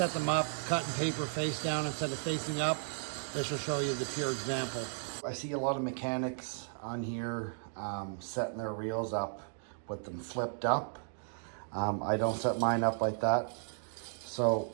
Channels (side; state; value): left; silent; digital silence